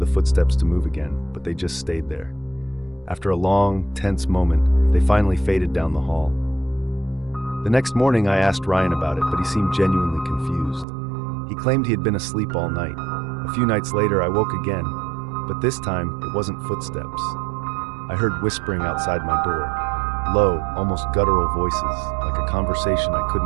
footsteps to move again, but they just stayed there. After a long, tense moment, they finally faded down the hall. The next morning, I asked Ryan about it, but he seemed genuinely confused. He claimed he had been asleep all night. A few nights later, I woke again, but this time, it wasn't footsteps. I heard whispering outside my door. Low, almost guttural voices, like a conversation I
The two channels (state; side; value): drops out; left; at 10.9 s